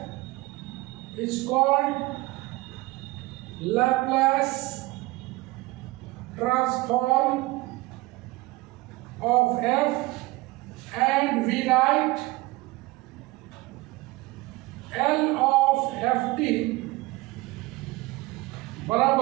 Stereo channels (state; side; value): quieter; left; 21.4 dB